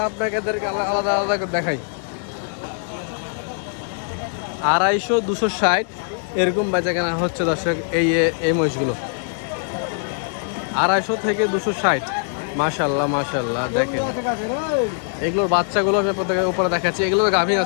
আপনাকে আলাদা আলাদা করে দেখাই। 250 260 এরকম বেচা কেনা হচ্ছে দর্শক এই মহিষগুলো। 250 থেকে 260। মাশাআল্লাহ মাশাআল্লাহ দেখেন এগুলোর বাচ্চাগুলো আমি আপনাদের উপরে দেখাচ্ছি। এগুলো তো গাভীন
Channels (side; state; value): right; silent; digital silence